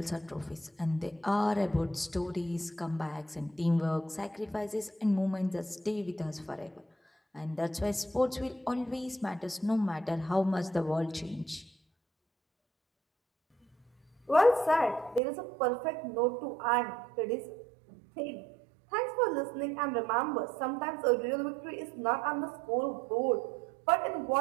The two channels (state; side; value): drops out; left; at 15.2 s